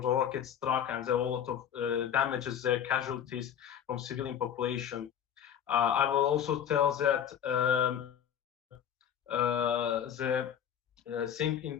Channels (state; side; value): quieter; right; 9.2 dB